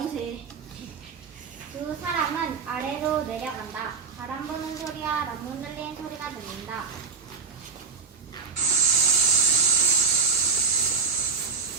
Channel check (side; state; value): left; quieter; 5.4 dB